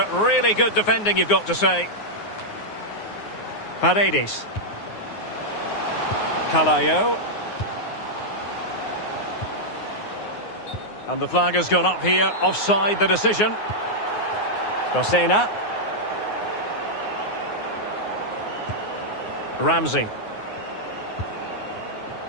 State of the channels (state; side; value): late; right; 9.6 ms